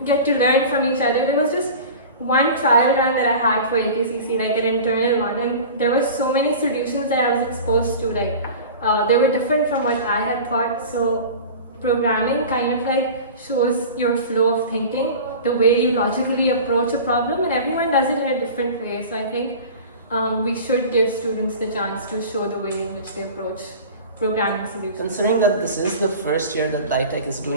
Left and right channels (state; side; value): inverted; both; correlation -0.36